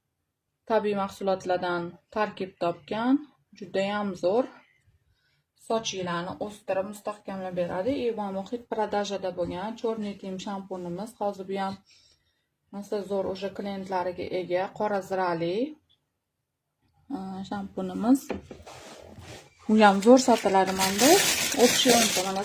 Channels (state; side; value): identical; both; correlation 1.00